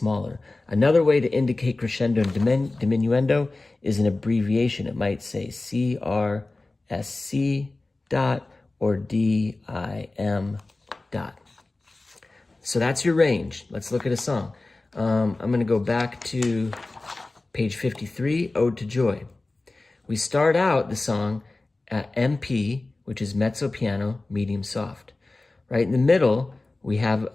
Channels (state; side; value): quieter; right; 3.1 dB